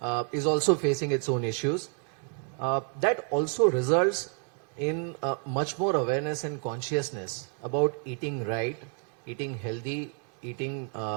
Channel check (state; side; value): quieter; left; 38.4 dB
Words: is also facing its own issues. That also results in much more awareness and consciousness about eating right, eating healthy, eating